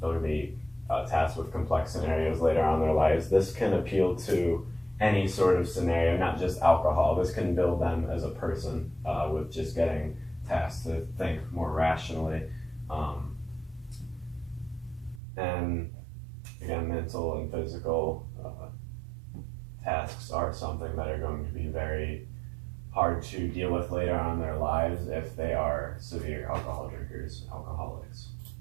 They'll be tasked with complex scenarios later on in their lives. This can appeal to any sort of scenario, not just alcohol. This can build them as a person with just getting tasked to think more rationally. And again, mental and physical tasks are something that are going to be very hard to deal with later on in their lives if they are severe alcohol drinkers, alcoholics.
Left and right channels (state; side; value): drops out; left; at 15.2 s